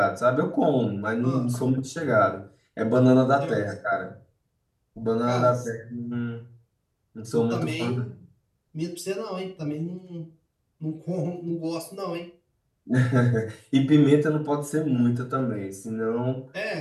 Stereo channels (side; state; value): both; identical; correlation 1.00